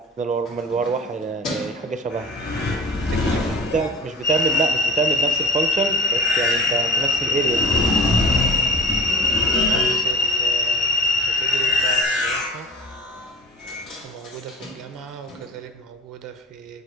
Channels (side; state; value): both; normal; correlation 0.37